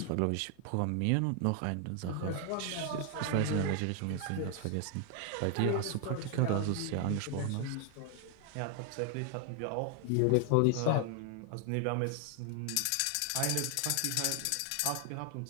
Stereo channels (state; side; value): different; both; correlation 0.00